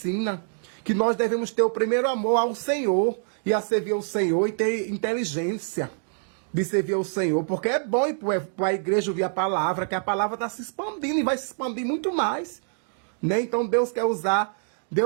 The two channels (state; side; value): silent; left; digital silence